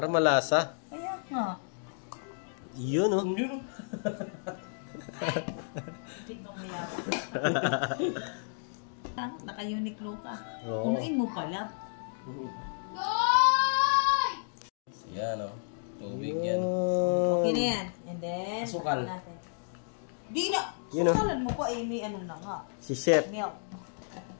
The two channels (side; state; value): right; silent; digital silence